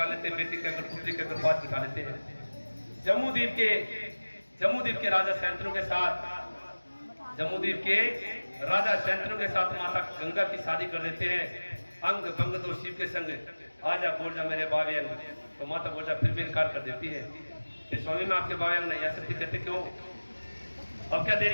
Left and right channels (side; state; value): both; inverted; correlation -1.00